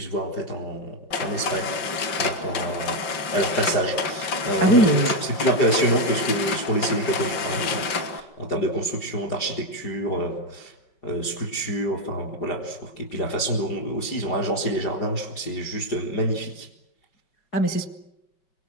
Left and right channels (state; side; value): late; right; 5.3 ms